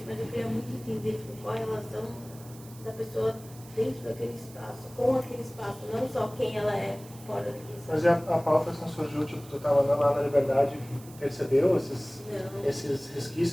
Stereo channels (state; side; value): noise; right; hiss, 21 dB below the sound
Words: mas eu queria muito entender tipo, qual a relação da pessoa dentro daquele espaço, com aquele espaço, não só quem ela é fora daquele espaço. Mas e a pauta assim surgiu, tipo, tu estava andando lá na Liberdade e percebeu esses